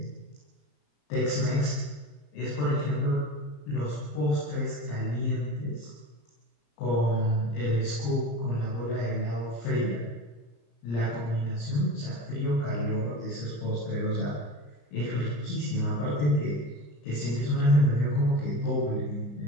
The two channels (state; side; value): late; right; 34 ms